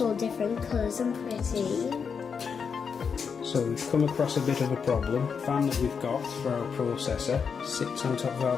all different colours and pretty. So we've come across a bit of a problem. The fan that we've got for our processor sits on top of our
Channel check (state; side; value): quieter; right; 6.2 dB